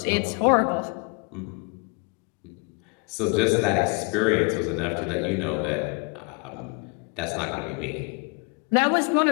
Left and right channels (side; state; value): right; quieter; 31.4 dB